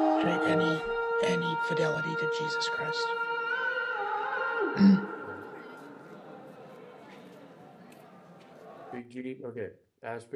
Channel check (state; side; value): identical; both; correlation 1.00